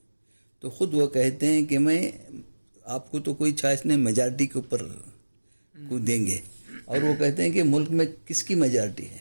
तो ख़ुद वो कहते हैं कि मैं आपको तो कोई चॉइस नहीं, मेजॉरिटी के ऊपर को देंगे। और वो कहते हैं कि मुल्क में किसकी मेजॉरिटी है?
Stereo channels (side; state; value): both; inverted; correlation -1.00